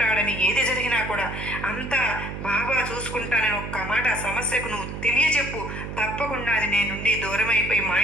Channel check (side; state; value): right; noise; hum, 8 dB below the sound